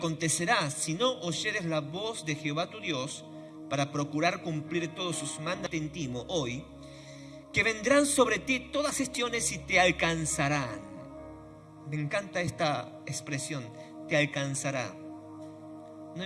si no oyeres la voz de Jehová tu Dios, para procurar cumplir todos sus mandatos hoy, que vendrán sobre ti todas gestiones y te alcanzarán. Me encanta esta expresión, te alcanzará. No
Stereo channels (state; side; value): identical; both; correlation 1.00